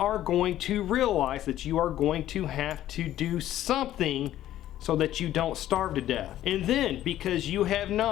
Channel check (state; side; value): quieter; right; 13.0 dB